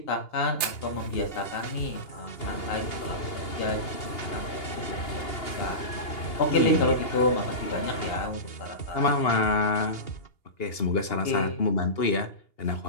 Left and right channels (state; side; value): late; right; 2.8 ms